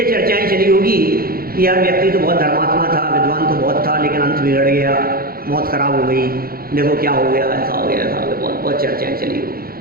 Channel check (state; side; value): late; left; 0.43 ms